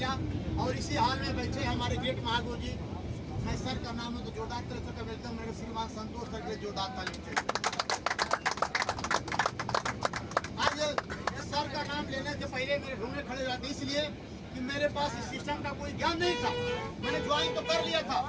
और इसी हाल में बैठे हमारे ग्रेट महागुरु जी, मैं सर का नाम है तो जोरदार तरह से वेलकम मेरे श्रीमान संतोष सर के जोरदार ताली चाहिए। आज सर का नाम लेने से पहले मेरे ढूंढने खड़े जाते, इसलिए कि मेरे पास इस सिस्टम का कोई ज्ञान नहीं था। मैंने ज्वाइन तो कर लिया था,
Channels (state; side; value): identical; both; correlation 1.00